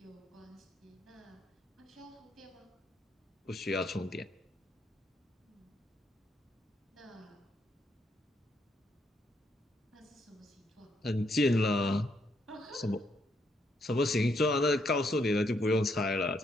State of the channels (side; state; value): both; normal; correlation 0.75